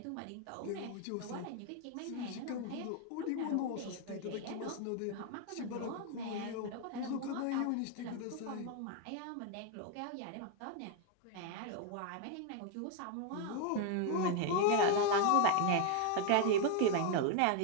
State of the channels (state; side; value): different; both; correlation 0.01